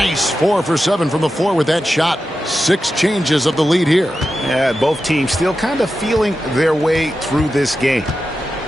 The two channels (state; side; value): normal; both; correlation 0.91